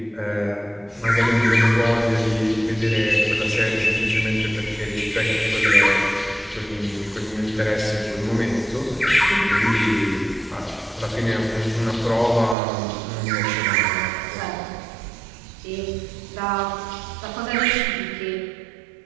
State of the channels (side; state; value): left; drops out; at 12.6 s